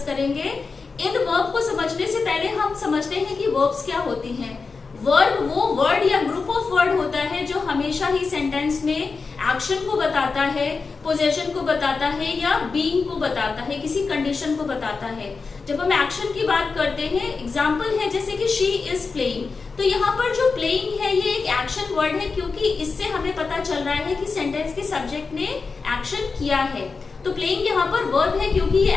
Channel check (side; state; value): right; quieter; 4.6 dB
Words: करेंगे। इन वर्ब को समझने से पहले हम समझते हैं कि वर्ब्स क्या होती हैं। वर्ब वो वर्ड या ग्रुप ऑफ वर्ड होता है जो हमेशा ही सेंटेंस में एक्शन को बताता है, पोजीशन को बताता है या बीइंग को बताता है, किसी कंडीशन को बताता है। जब हम एक्शन की बात करते हैं, एग्जांपल है जैसे कि शी इज प्लेइंग, तो यहाँ पर जो प्लेइंग है ये एक एक्शन वर्ड है क्योंकि इससे हमें पता चल रहा है कि सेंटेंस के सब्जेक्ट ने एक्शन किया है। तो प्लेइंग यहाँ पर वर्ब है क्योंकि ये